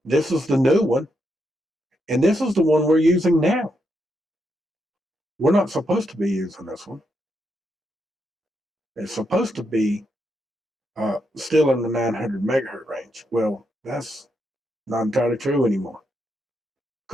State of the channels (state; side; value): normal; both; correlation 0.81